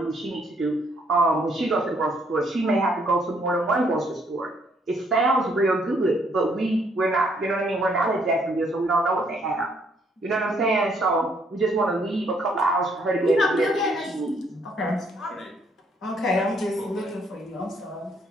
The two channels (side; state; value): both; normal; correlation 0.68